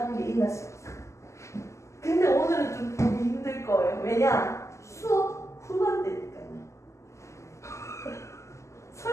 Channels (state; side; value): late; right; 0.14 ms